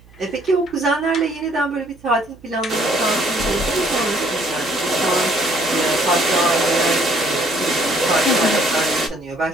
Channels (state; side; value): noise; right; hum, 26 dB below the sound